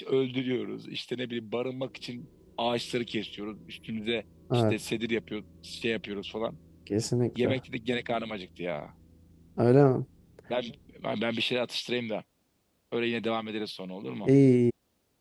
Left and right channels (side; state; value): both; identical; correlation 1.00